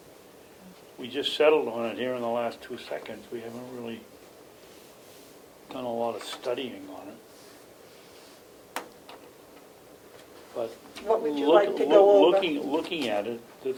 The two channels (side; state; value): both; identical; correlation 1.00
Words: we just settled on it here in the last 2 seconds. We haven't really done a lot of studying on it. But What would you like to go over? Looking at it, the